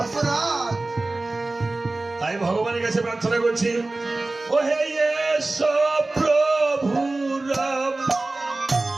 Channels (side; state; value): left; quieter; 3.1 dB